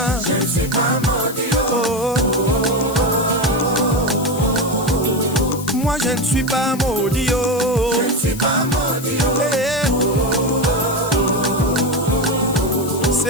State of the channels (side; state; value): left; noise; hiss, 14 dB below the sound